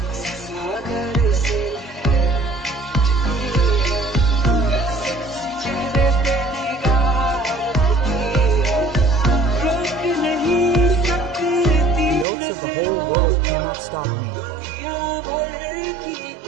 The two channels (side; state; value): left; drops out; at 12.2 s